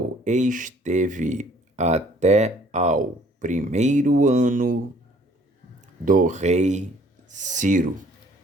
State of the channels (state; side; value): normal; both; correlation 0.58